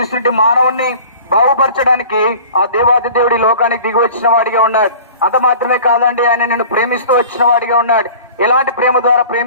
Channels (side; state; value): both; inverted; correlation -0.43